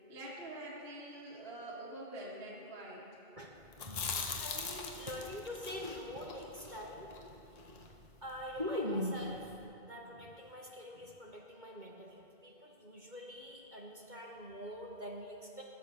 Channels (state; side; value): late; left; 2.2 ms